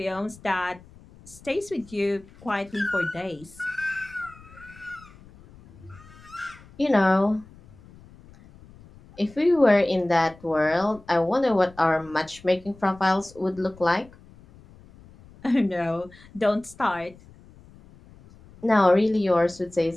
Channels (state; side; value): noise; left; rumble, 23 dB below the sound